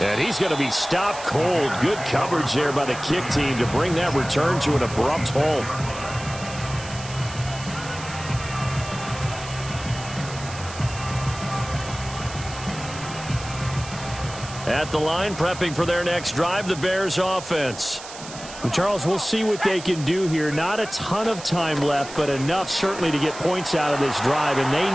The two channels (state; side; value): noise; right; hiss, 13 dB below the sound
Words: And he's going to be stopped cold. Good coverage there by the kick team to bring that return to an abrupt halt. At the line, prepping for their next drive, the Bears offense. And Charles, we'll see what they can do here. Not a ton of time left, but enough certainly to get points out of this drive, and they